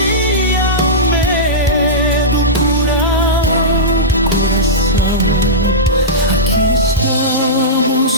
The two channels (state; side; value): normal; both; correlation -0.15